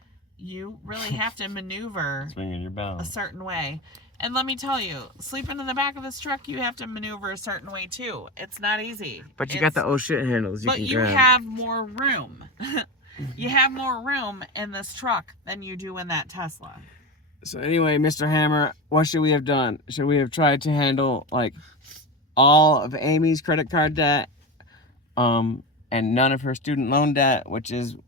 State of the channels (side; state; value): both; normal; correlation 0.21